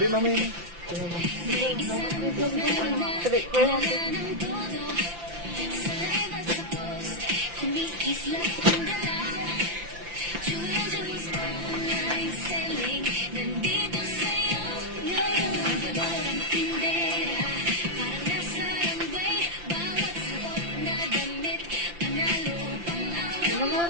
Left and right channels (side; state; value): left; late; 5.8 ms